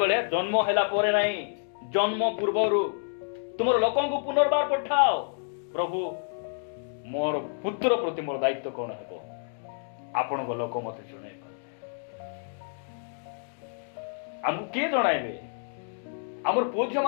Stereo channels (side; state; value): right; silent; digital silence